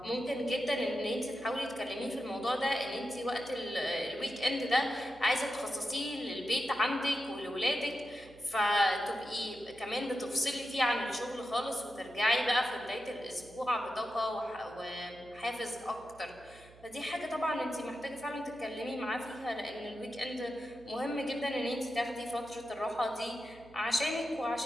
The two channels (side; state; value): right; noise; hum, 23 dB below the sound